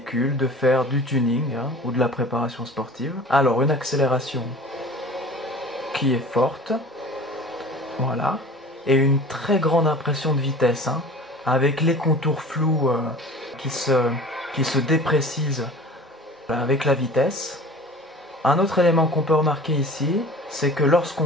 de faire du tuning ou de la préparation sportive. Alors une accélération qui est forte, voilà, et une très grande impression de vitesse, avec les contours flous qui se déprécisent avec la vitesse. Un autre élément qu'on peut remarquer ici, c'est que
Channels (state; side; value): normal; both; correlation 0.41